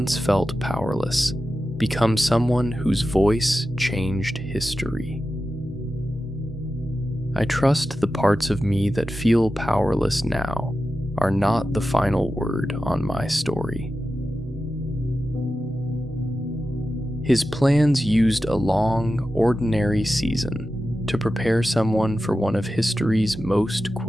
felt powerless become someone whose voice changed history. I trust the parts of me that feel powerless now are not the final word on my story. His plans used a long, ordinary season to prepare someone for one of history's most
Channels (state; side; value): normal; both; correlation 0.92